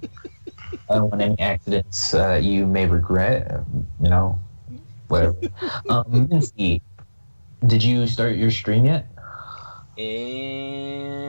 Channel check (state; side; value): inverted; both; correlation -1.00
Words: I don't want any accidents you may regret, you know, whatever. Minty, did you start your stream yet?